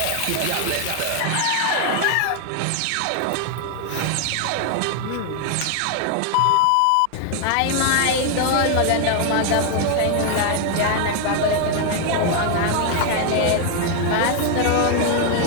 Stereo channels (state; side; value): different; both; correlation 0.00